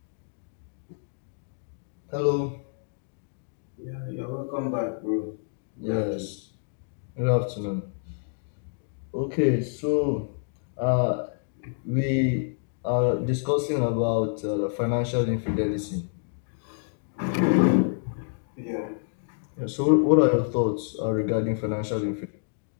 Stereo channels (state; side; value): silent; right; digital silence